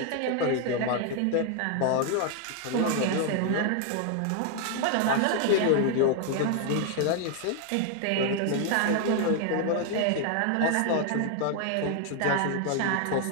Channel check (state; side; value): different; both; correlation 0.00